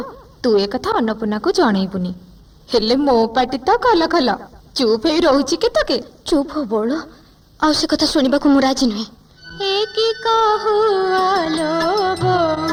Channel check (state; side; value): identical; both; correlation 1.00